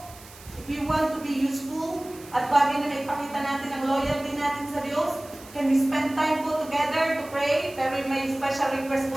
if we want to be useful at bagay na maipakita natin ang loyalty natin sa Diyos, can we spend time po together to pray? Pero may special request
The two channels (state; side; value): noise; right; hiss, 20 dB below the sound